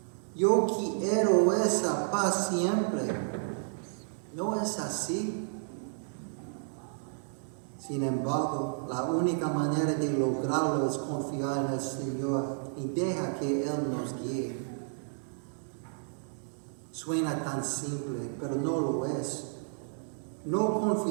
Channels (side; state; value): left; silent; digital silence